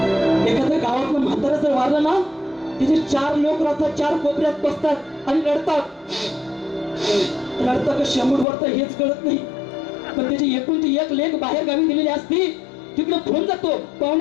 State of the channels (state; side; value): drops out; right; at 8.5 s